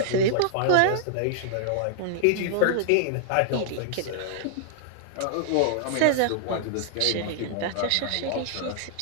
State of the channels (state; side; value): different; both; correlation -0.01